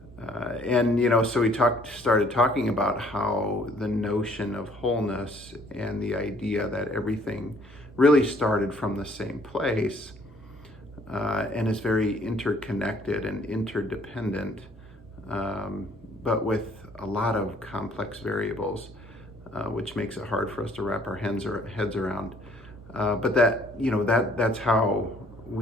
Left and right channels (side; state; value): both; normal; correlation 0.61